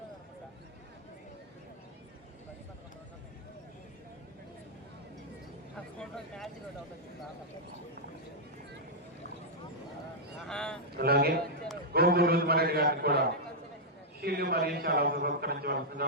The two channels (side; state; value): both; normal; correlation -0.07